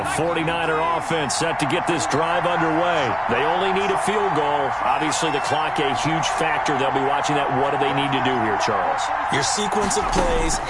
The 49er offense set to get this drive underway. They only need a field goal. Obviously, the clock a huge factor. They'll be watching that. What do they need to do here, Charles? Your sequence of plays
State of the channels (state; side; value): identical; both; correlation 1.00